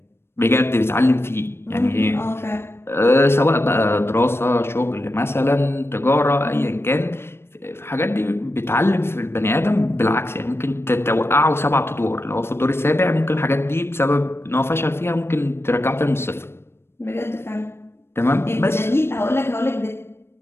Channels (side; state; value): right; late; 0.12 ms